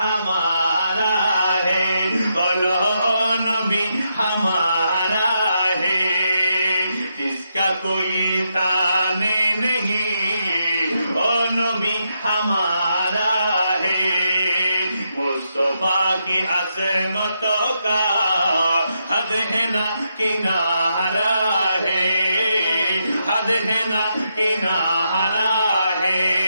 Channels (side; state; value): both; inverted; correlation -0.82